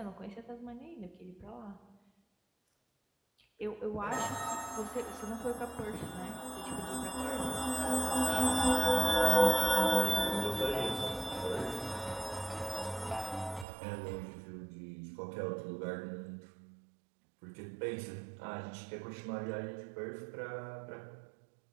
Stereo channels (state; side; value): drops out; left; at 13.7 s